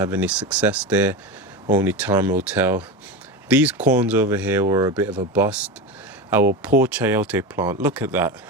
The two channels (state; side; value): normal; both; correlation 0.22